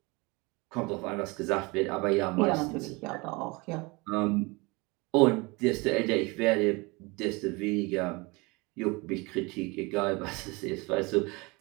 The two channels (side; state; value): left; quieter; 25.9 dB